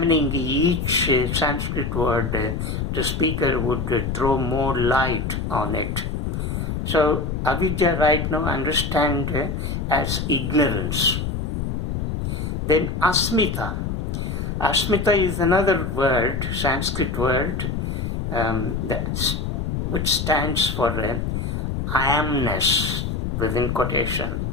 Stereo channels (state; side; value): noise; left; rumble, 2 dB below the sound